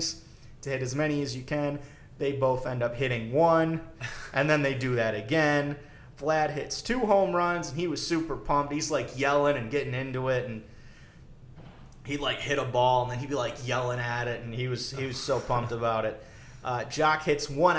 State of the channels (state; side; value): identical; both; correlation 1.00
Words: to hit as many as you can. They both end up hitting 1, and then they do that again. Vlad hits 2 home runs, and he was super pumped. He's yelling and getting into it, and he'd hit a ball, and then he'd be yelling at it, and he was so pumped about it. Jock hits 1